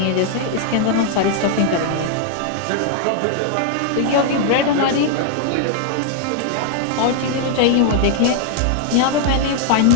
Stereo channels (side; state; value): both; different; correlation 0.00